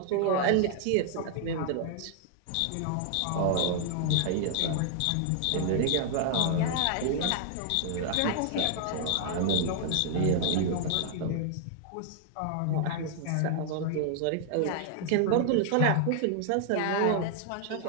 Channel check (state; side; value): different; both; correlation -0.01